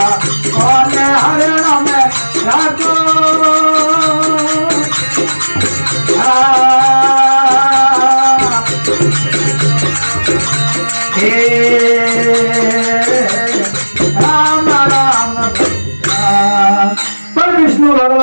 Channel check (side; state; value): both; inverted; correlation -1.00